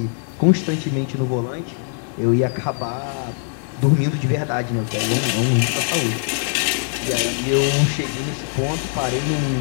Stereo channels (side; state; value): right; silent; 64 dB below the other